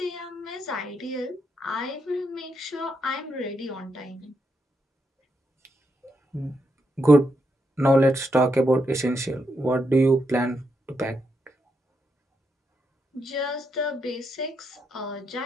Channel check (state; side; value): normal; both; correlation 0.81